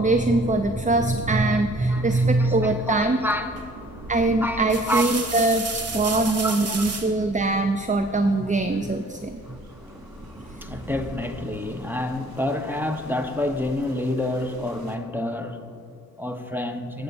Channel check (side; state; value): both; normal; correlation 0.55